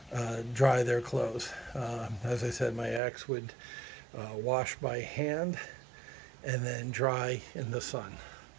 dry their clothes. As I said, my ex would wash by hand and then dry in the sun.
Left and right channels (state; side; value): drops out; left; at 3.0 s